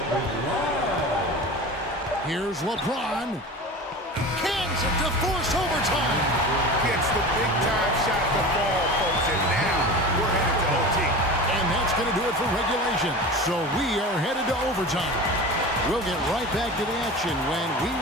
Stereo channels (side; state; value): both; normal; correlation 0.33